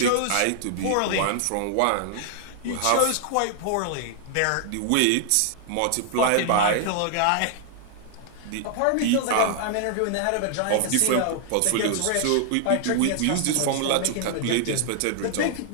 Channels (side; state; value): both; different; correlation 0.00